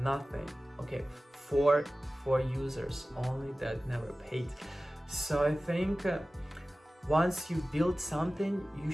nothing. Okay, four users only that never paid. So I think once you build something, you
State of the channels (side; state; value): both; normal; correlation 0.96